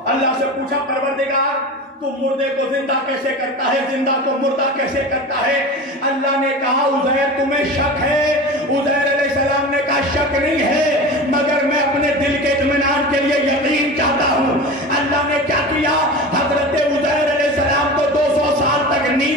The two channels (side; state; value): both; normal; correlation 0.31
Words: اللہ سے پوچھا پروردگار تو مردے کو زندہ کیسے کرتا ہے، زندہ کو مردہ کیسے کرتا ہے؟ اللہ نے کہا عزیر تمہیں شک ہے. عزیر علیہ السلام نے کہا شک نہیں ہے، مگر میں اپنے دل کے اطمینان کے لیے یقین چاہتا ہوں. اللہ نے کیا کیا؟ حضرت عزیر علیہ السلام کو 200 سال تک